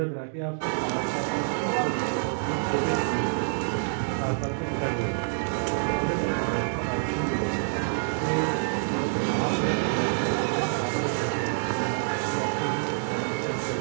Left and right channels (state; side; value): silent; left; digital silence